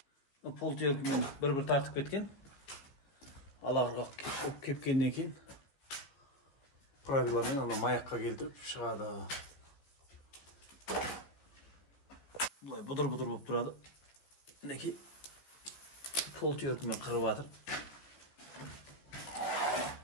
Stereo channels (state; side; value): late; right; 15 ms